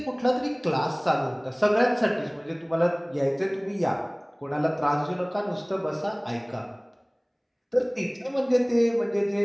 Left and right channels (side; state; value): both; identical; correlation 1.00